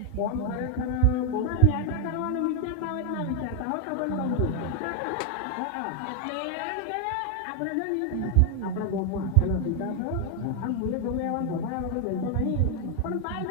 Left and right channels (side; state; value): both; different; correlation 0.00